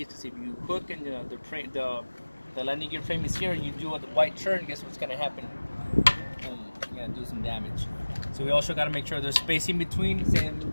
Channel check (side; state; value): both; inverted; correlation -1.00